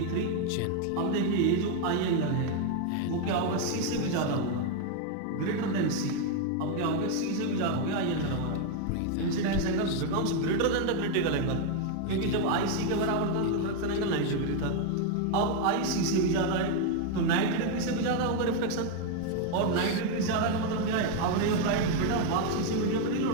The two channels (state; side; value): different; both; correlation 0.01